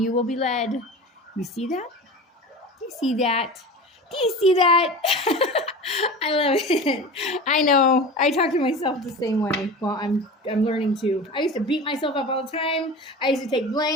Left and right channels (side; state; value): both; normal; correlation 0.32